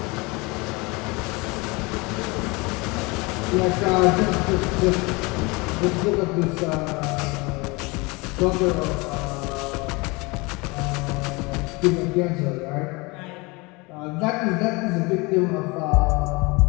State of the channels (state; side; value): quieter; right; 26.0 dB